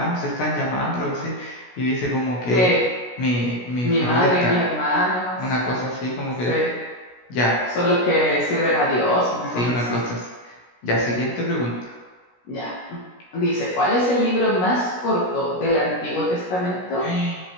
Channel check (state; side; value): late; right; 16 ms